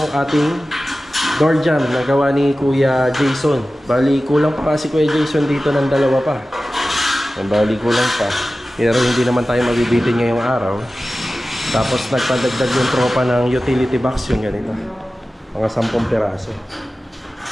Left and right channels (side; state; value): both; normal; correlation 0.95